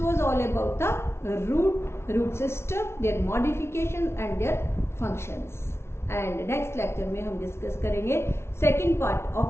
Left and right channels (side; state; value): right; late; 0.12 ms